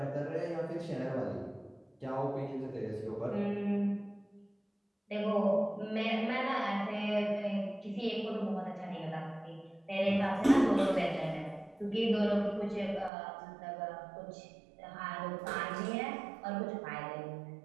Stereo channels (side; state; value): left; drops out; at 13.1 s